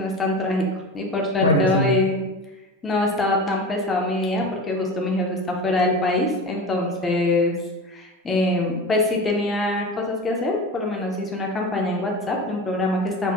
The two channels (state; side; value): normal; both; correlation 0.29